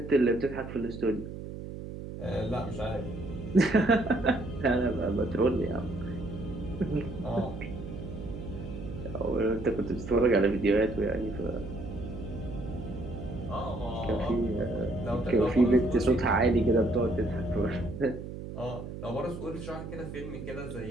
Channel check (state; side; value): noise; right; hum, 9 dB below the sound